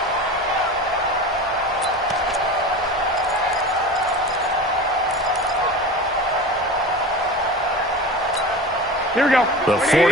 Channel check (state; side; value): normal; both; correlation 0.32